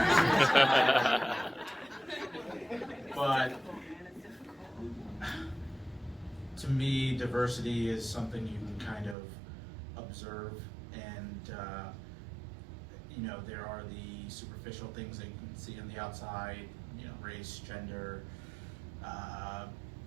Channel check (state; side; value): drops out; left; at 9.2 s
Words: But to me, diversity is something you can kind of observe, and you know, there are the superficial things that you can see on the outside, you know, race, gender.